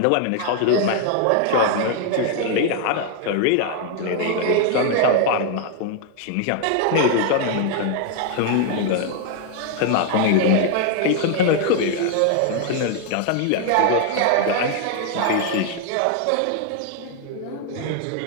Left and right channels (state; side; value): different; both; correlation 0.00